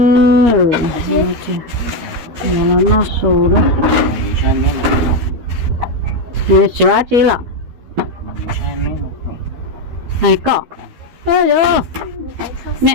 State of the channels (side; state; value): left; late; 13 ms